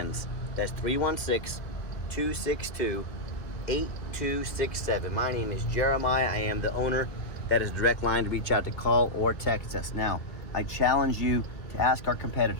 That's 316-262-8267. My name is Jeremiah. I am the owner. That is a direct line to reach out to call or text us. Now, I challenge you to ask our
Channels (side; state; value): right; late; 2.1 ms